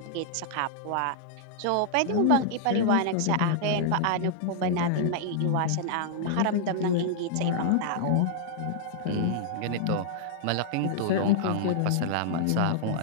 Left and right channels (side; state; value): both; different; correlation -0.01